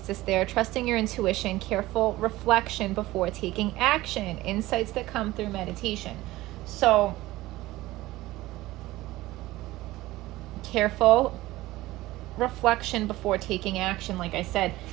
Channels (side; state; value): left; quieter; 17.9 dB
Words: there. Trusting your intuition, careful reflection before taking action, insights that come through meditation. So, careful reflection before taking action, like I said,